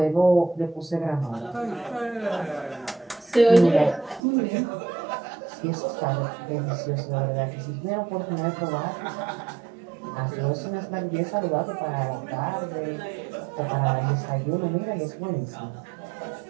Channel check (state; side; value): drops out; left; at 4.2 s